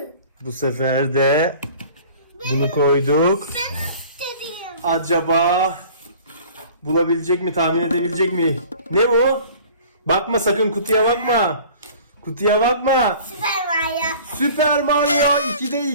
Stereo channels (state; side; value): inverted; both; correlation -0.47